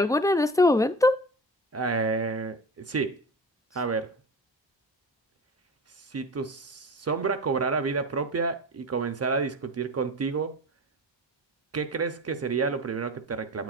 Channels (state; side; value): normal; both; correlation 0.34